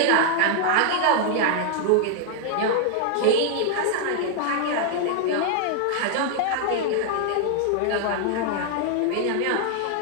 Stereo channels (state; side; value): different; both; correlation 0.00